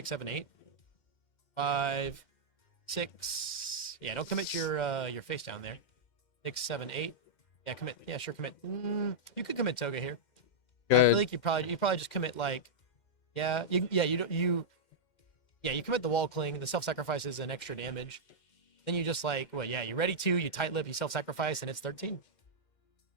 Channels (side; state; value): right; late; 2.1 ms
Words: 7, 8. 5, 6. Yeah, don't commit your face down there. 6, 7, 8. Yeah, commit. Yeah, sure, commit. You could commit Toga here. I Good. feel like you probably just commit like, you commit the wall cling. The self-sacrifice is an extra damage. Then you just like, you ready to, you tight lip, you self-sacrifice, and it's 13.